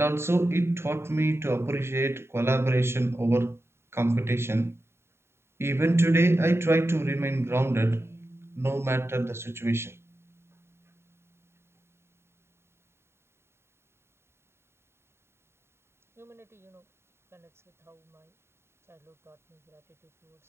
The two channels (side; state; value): left; late; 0.12 ms